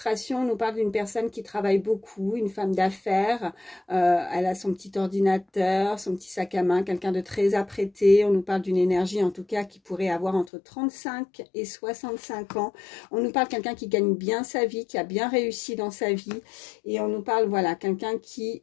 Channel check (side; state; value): right; drops out; at 10.5 s